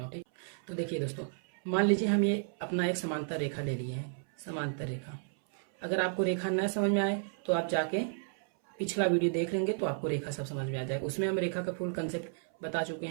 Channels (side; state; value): left; silent; 56 dB below the other